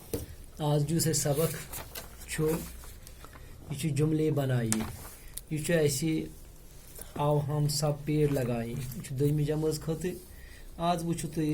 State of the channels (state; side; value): identical; both; correlation 1.00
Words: آج جو سے سبق چھو یہ جملے بنائیے. یہ ایسے آو ہم سب پیڑ لگائیں یہ دویمہِ جمٲژ خٲطرٕ. آج وچھو